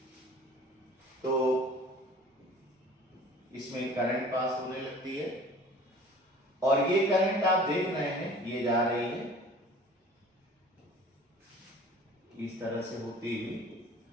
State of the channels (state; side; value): normal; both; correlation 0.46